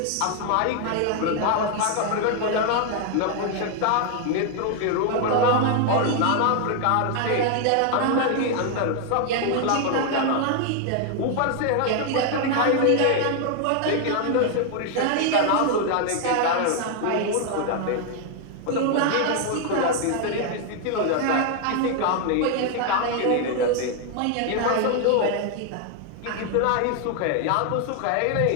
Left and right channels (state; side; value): different; both; correlation 0.00